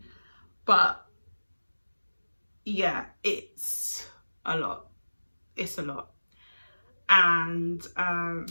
but yeah, it's a lot. It's a lot. And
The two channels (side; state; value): both; inverted; correlation -1.00